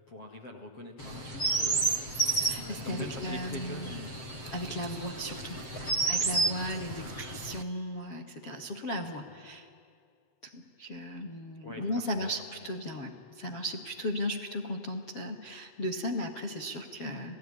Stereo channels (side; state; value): right; late; 7.7 ms